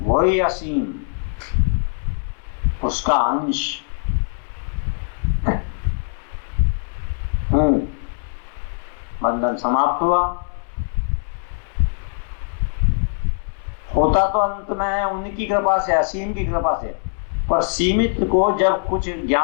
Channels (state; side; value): silent; right; digital silence